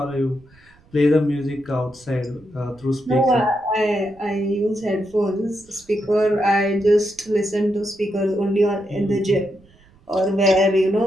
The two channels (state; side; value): noise; right; rumble, 29 dB below the sound